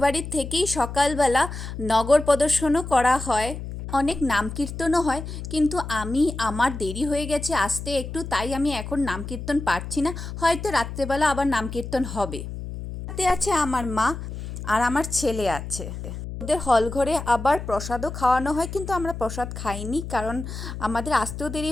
থেকেই সকালবেলা নগর প্রদর্শনও করা হয়, অনেক নাম কীর্তনও হয়। কিন্তু আমার দেরি হয়ে গেছে আসতে একটু, তাই আমি এখন নাম কীর্তন পারছি না। হয়তো রাত্রেবেলা আবার নাম কীর্তন হবে। সাথে আছে আমার মা আর আমার ছেলে আছে। ওদের হল ঘরে আবার প্রসাদও খাওয়ানো হয়, কিন্তু আমরা প্রসাদ খাইনি কারণ আমাদের আসতেও দেরি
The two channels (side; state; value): left; noise; hum, 8 dB below the sound